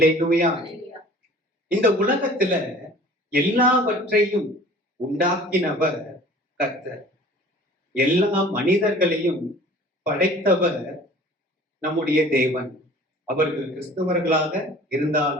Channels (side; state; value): both; normal; correlation 0.47